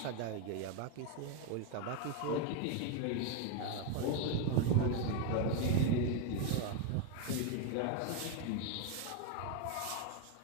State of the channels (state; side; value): different; both; correlation 0.01